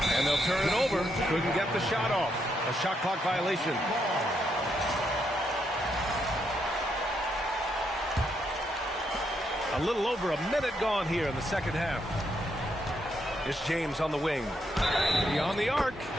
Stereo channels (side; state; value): both; normal; correlation 0.78